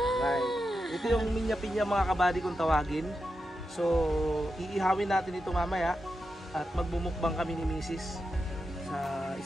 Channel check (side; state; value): both; normal; correlation 0.88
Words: Ito yung minya-pinya mga kabady kung tawagin. So iihawin natin ito mamaya at magmumukbang kami ni Mrs.